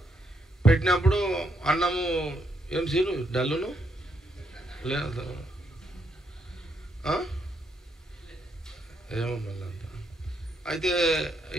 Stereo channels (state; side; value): normal; both; correlation 0.77